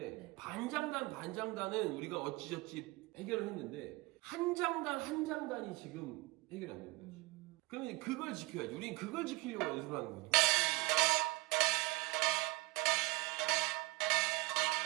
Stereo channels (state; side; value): quieter; left; 22.8 dB